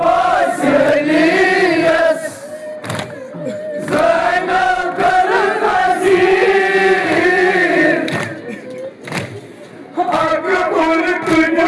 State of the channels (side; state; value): both; identical; correlation 1.00